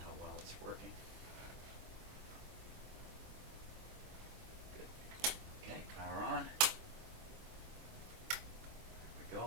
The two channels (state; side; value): late; left; 24 ms